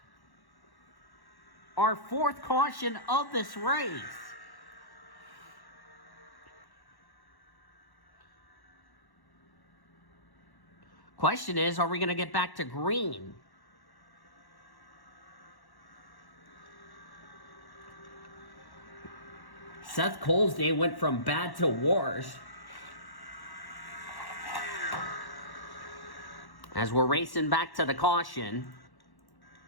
Our 4th caution of this race. Question is, are we going to get back to green? Seth Cole's day went from bad to worse. As we're racing back to the caution.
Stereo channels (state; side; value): late; right; 1.1 ms